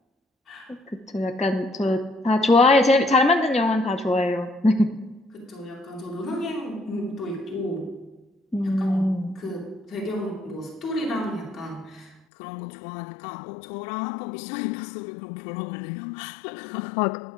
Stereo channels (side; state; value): right; drops out; at 12.2 s